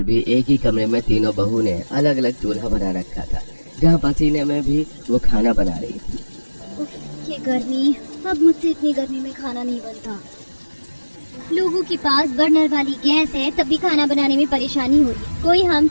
भी एक ही कमरे में तीनों बहू ने अलग अलग चूल्हा बना रखा था, जहाँ पसीने में भी वो खाना बना रही थी। ये गर्मी, अब मुझसे इतनी गर्मी में खाना नहीं बनता। लोगों के पास बर्नर वाली गैस है, तब भी खाना बनाने में परेशानी हो रही। कोई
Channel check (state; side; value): inverted; both; correlation -1.00